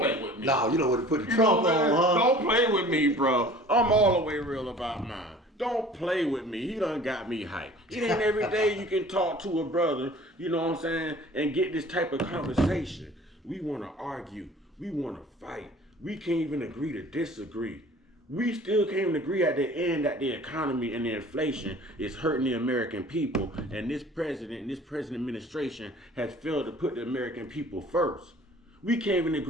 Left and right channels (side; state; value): both; normal; correlation 0.47